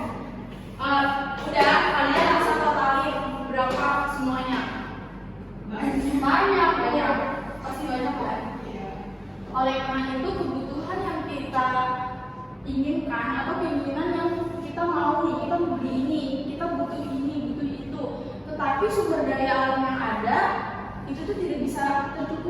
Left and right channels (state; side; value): identical; both; correlation 1.00